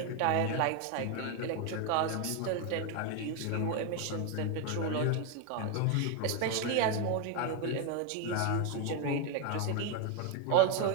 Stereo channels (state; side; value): different; both; correlation 0.01